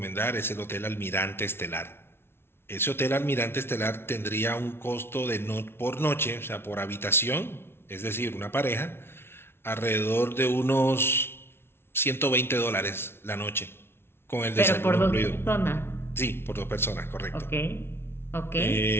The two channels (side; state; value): right; late; 0.12 ms